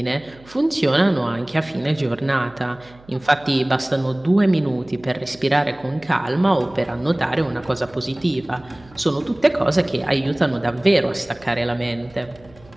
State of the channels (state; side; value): noise; right; hum, 25 dB below the sound